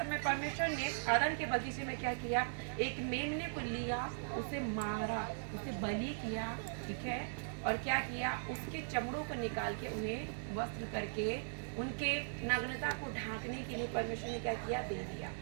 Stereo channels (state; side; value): silent; left; 52 dB below the other